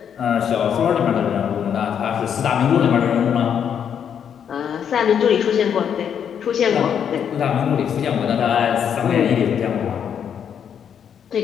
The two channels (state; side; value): quieter; right; 8.2 dB